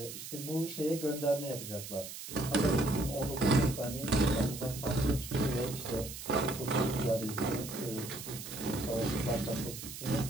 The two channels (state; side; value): noise; right; hiss, 10 dB below the sound